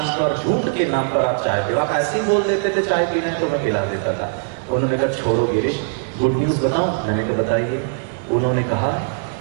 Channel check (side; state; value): left; silent; 66 dB below the other